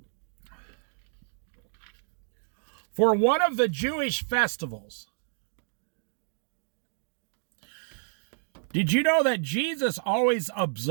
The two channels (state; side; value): silent; left; digital silence